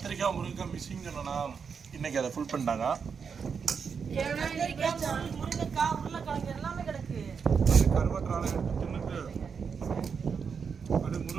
முருங்கைக்காய் மிஸ்ஸிங் சொன்னா இன்னைக்கு அதை ஃபுல் பண்ணிட்டாங்க. முருங்கைக்காய் உருளைக்கிழங்கு எல்லாமே கிடக்கு. கருவாட்டு ராளை எடுத்து தின்னுட்டு அது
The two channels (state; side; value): quieter; left; 6.1 dB